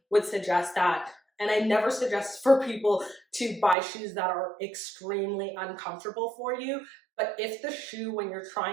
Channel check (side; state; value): left; drops out; at 3.8 s